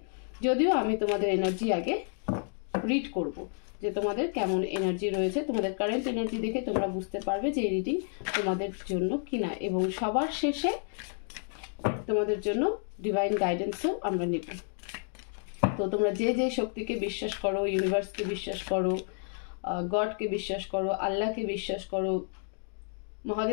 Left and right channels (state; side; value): silent; right; 58 dB below the other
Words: যদিও আমি তোমাদের এনার্জি আগে রিড করব, যে তোমাদের কেমন এনার্জি রয়েছে, তোমাদের কারেন্ট এনার্জি দেখে তোমরা বুঝতে পারবে যে এই রিডিং তোমাদের জন্য কিনা, এবং সবার শেষে তোমাদের জন্য ডিভাইন গাইডেন্সও আমরা নেব। তো তোমরা যে যে শক্তিকে বিশ্বাস করো, ইউনিভার্সকে বিশ্বাস করো, গডকে বিশ্বাস করো, আল্লাহকে বিশ্বাস করো,